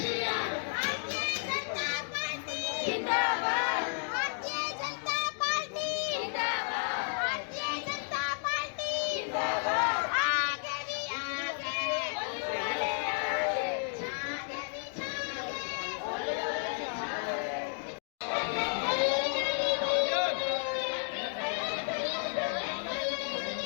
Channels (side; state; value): right; silent; 56 dB below the other